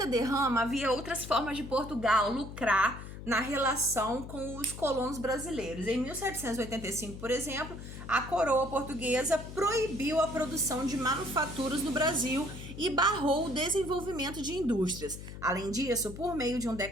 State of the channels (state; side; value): noise; left; hum, 11 dB below the sound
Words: derrama, havia outras formas de Portugal lucrar na relação com os colonos brasileiros. Em 1785, por exemplo, a coroa portuguesa proibiu a produção de manufaturas no Brasil e barrou o desenvolvimento de indústrias. Além disso, por meio de um